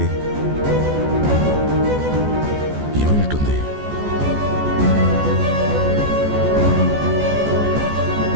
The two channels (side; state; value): left; late; 14 ms